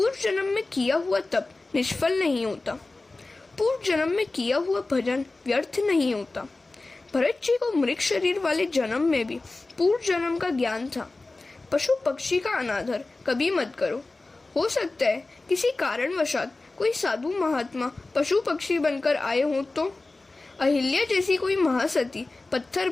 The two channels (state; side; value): quieter; right; 3.2 dB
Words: जन्म में किया हुआ तप निष्फल नहीं होता। पूर्व जन्म में किया हुआ भजन व्यर्थ नहीं होता। भरत जी को मृग शरीर वाले जन्म में भी पूर्व जन्म का ज्ञान था। पशु पक्षी का अनादर कभी मत करो। हो सकता है किसी कारणवशात कोई साधु महात्मा पशु पक्षी बनकर आए हों तो, अहिल्या जैसी कोई महासती पत्थर